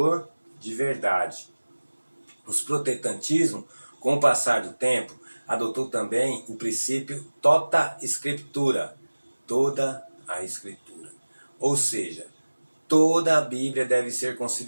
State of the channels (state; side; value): inverted; both; correlation -1.00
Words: de verdade. O protestantismo, com o passar do tempo, adotou também o princípio tota scriptura, toda a Escritura. Ou seja, toda a Bíblia deve ser